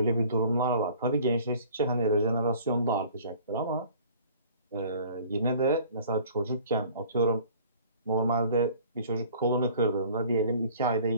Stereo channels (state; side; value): inverted; both; correlation -0.51